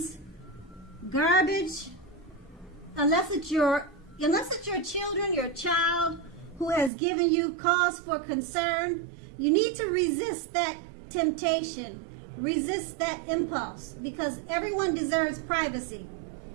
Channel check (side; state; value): left; drops out; at 6.9 s